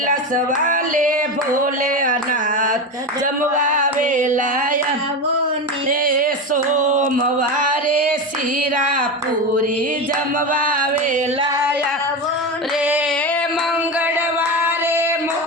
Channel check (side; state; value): both; normal; correlation 0.19